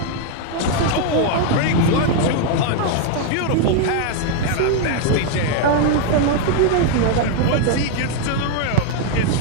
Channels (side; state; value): both; different; correlation 0.00